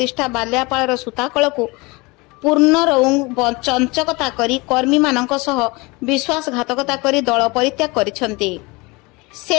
बालियापालर सूताकलकु पूर्ण चंचकता करी कर्मी मानक सह विश्वासघातकता करी दल परित्याग करिसंती।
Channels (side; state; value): right; quieter; 25.1 dB